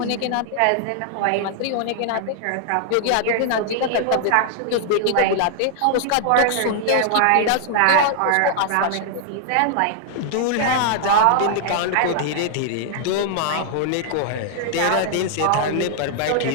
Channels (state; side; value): different; both; correlation 0.00